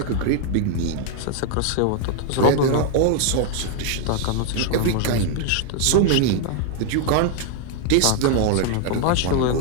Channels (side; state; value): both; different; correlation 0.00